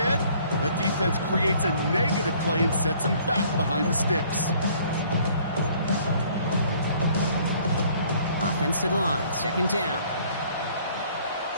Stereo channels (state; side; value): inverted; both; correlation -0.59